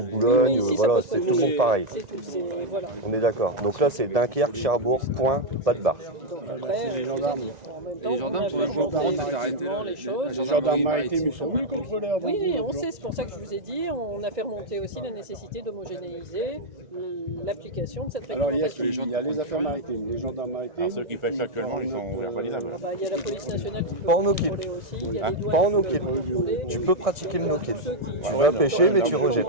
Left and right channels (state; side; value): late; left; 2.0 ms